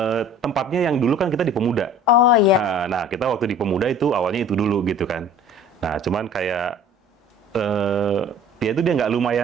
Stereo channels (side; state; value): both; normal; correlation 0.47